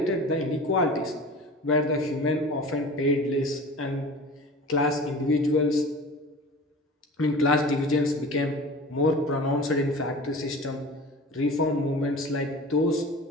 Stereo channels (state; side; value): normal; both; correlation 0.38